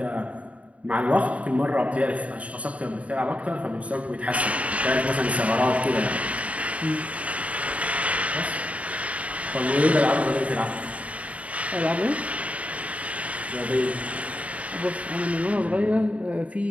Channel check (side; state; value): left; late; 0.066 ms